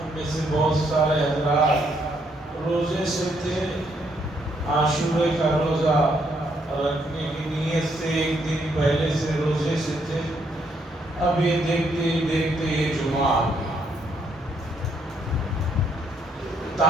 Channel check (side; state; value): both; normal; correlation 0.72